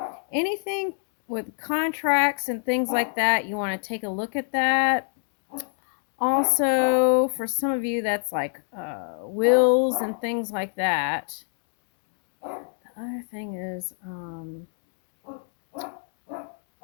anything with contracts and things like that, you want to take a look at that. Also, for some of you, that's like wills and things like that. The other thing is,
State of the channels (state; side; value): silent; right; 60 dB below the other